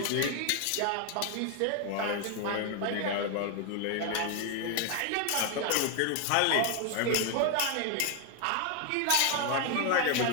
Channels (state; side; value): different; both; correlation 0.01